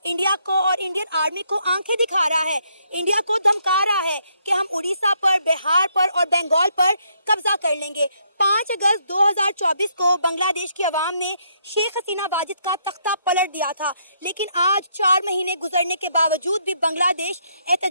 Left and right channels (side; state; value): both; inverted; correlation -0.73